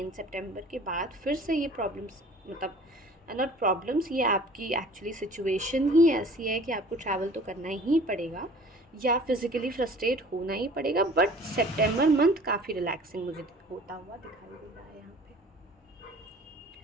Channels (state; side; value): normal; both; correlation 0.48